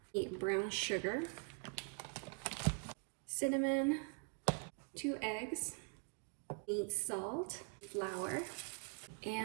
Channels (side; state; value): left; quieter; 39.9 dB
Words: you need brown sugar, cinnamon, 2 eggs, you need salt, flour,